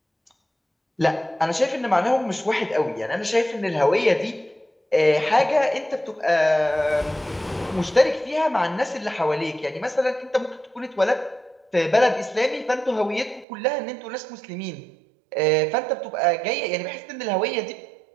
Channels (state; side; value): drops out; left; at 13.5 s